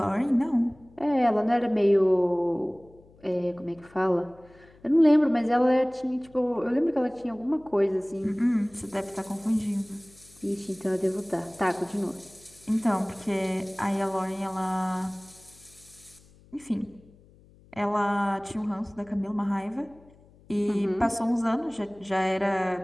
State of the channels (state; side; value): noise; left; hum, 27 dB below the sound